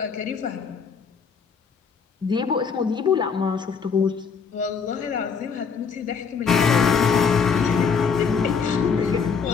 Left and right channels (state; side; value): quieter; right; 5.8 dB